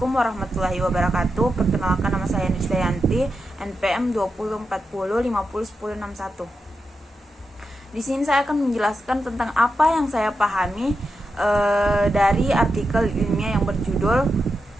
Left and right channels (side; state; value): both; normal; correlation 0.88